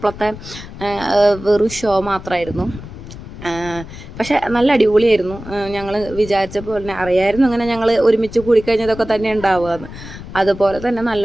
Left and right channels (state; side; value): noise; left; rumble, 13 dB below the sound